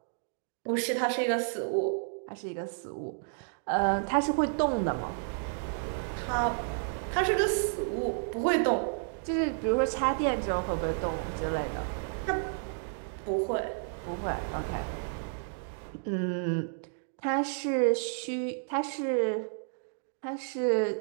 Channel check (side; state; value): left; silent; digital silence